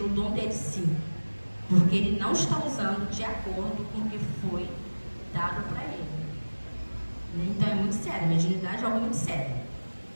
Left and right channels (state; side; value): inverted; both; correlation -1.00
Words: o dom dele sim, porque ele não está usando de acordo com o que foi dado para ele. Então é muito sério, a mediunidade é algo muito sério.